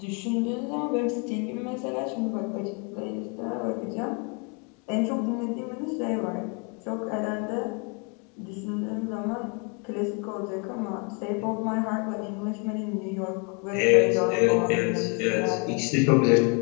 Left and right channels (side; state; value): right; quieter; 33.8 dB